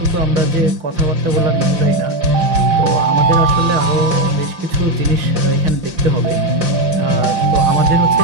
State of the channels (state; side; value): late; left; 5.9 ms